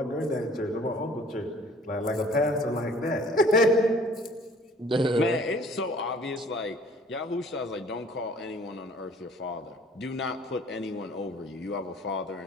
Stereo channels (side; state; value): both; normal; correlation 0.53